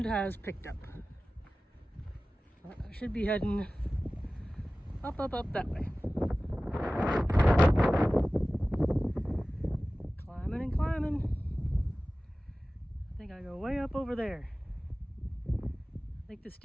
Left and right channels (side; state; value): both; normal; correlation 0.97